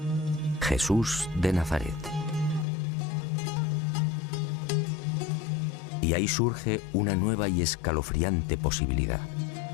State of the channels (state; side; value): drops out; right; at 2.7 s